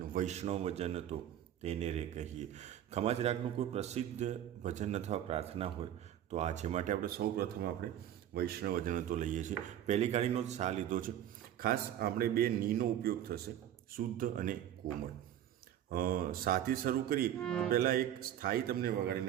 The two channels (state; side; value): quieter; left; 11.1 dB